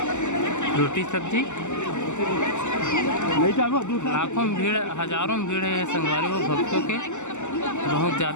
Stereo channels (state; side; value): late; right; 0.84 ms